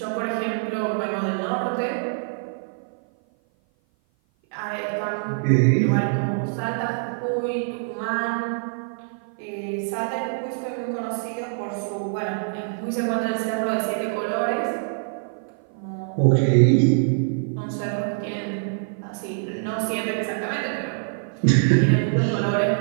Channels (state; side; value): silent; left; 56 dB below the other